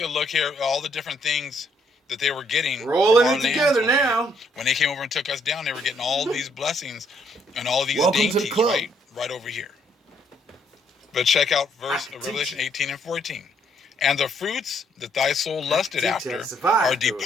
a look here, all the different things that they were getting We're all from in our it lands together over here. now. When they came over and took us down, they were getting all these blessings and all these Welcome to the dainties, club. right over here. But check out verse Revelation 18 and 14. And the fruits that thy soul lusted after are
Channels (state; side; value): normal; both; correlation 0.70